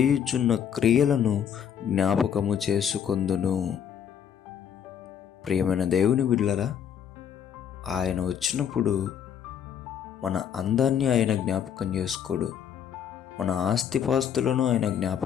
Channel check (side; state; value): right; quieter; 8.6 dB